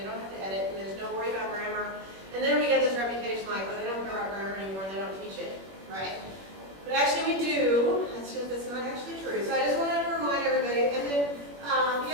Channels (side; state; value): left; late; 21 ms